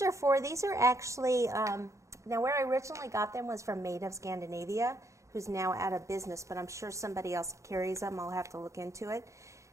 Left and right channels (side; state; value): left; late; 0.15 ms